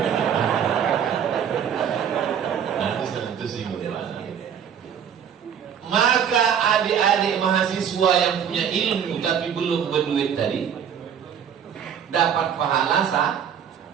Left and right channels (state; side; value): quieter; left; 8.4 dB